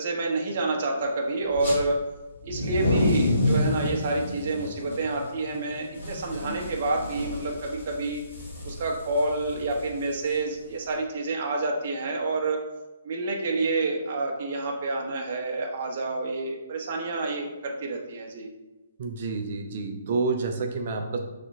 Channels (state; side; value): inverted; both; correlation -0.68